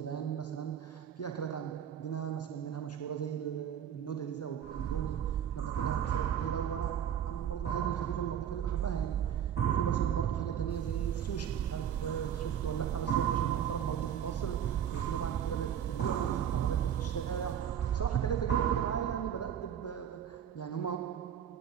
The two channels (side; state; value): left; quieter; 9.2 dB